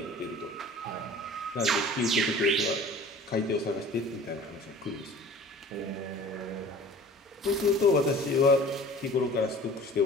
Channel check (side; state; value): both; normal; correlation 0.44